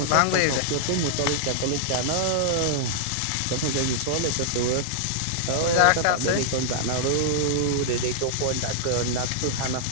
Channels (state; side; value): different; both; correlation -0.02